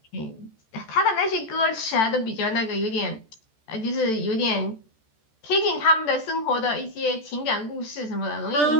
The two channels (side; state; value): right; late; 14 ms